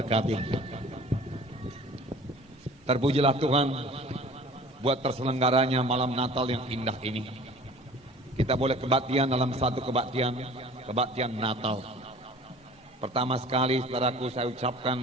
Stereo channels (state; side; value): normal; both; correlation 0.46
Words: Terpujilah Tuhan buat terselenggaranya malam Natal yang indah ini. Kita boleh kebaktian dalam satu kebaktian Natal. Pertama sekali saudaraku, saya